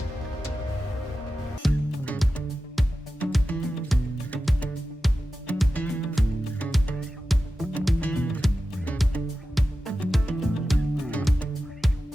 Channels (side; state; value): both; normal; correlation 0.93